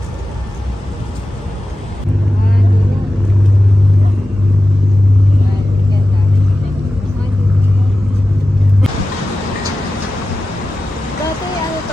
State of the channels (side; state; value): both; normal; correlation 0.94